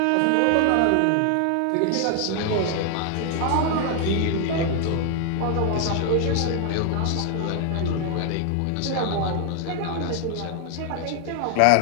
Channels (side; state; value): both; different; correlation 0.00